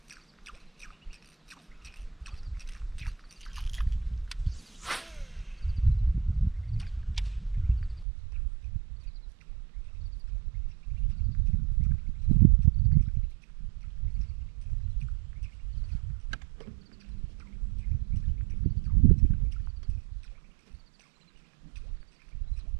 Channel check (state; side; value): drops out; left; at 8.1 s